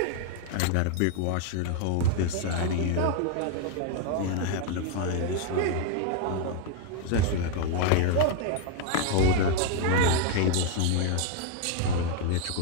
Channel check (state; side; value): different; both; correlation 0.01